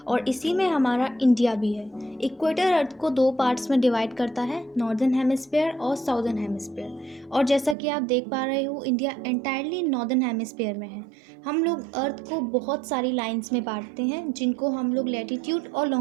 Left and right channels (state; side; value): drops out; left; at 7.8 s